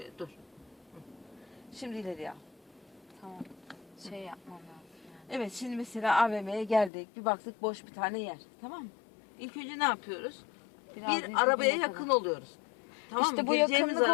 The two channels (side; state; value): right; drops out; at 6.9 s